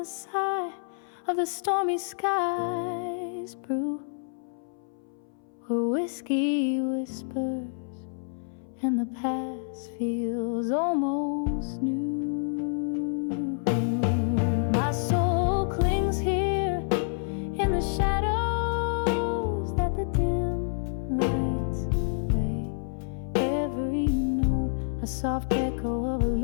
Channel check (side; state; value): right; silent; 58 dB below the other